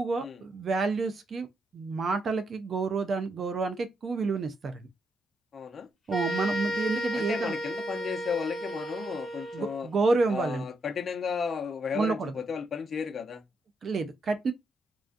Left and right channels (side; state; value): both; normal; correlation 0.79